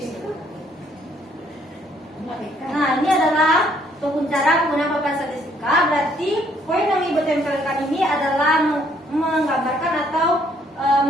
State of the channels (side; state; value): both; normal; correlation 0.66